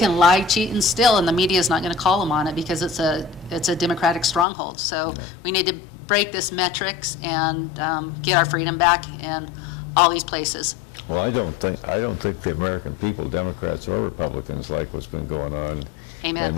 lie, cheat, and steal, and the media is not going to call them on it because it's a Democratic stronghold. So we need to break this metrics and get our freedom back in all these places. Well, I don't think the American people, Democrats or Republicans, like what's been going on Amen. in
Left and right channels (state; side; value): drops out; right; at 4.5 s